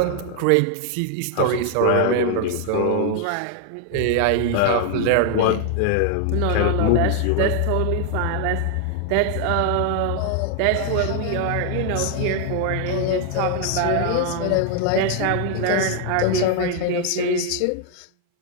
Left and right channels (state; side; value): different; both; correlation 0.00